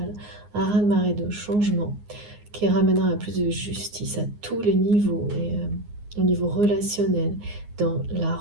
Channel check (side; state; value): left; late; 9.6 ms